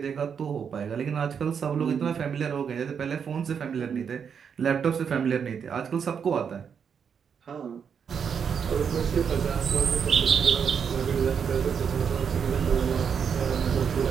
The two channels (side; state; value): left; quieter; 7.0 dB